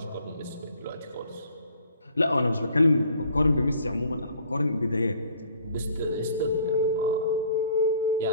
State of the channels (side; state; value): both; inverted; correlation -0.58